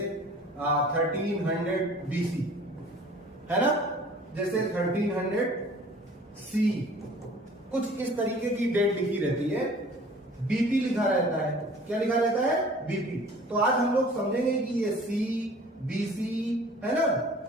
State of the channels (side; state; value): both; normal; correlation 0.49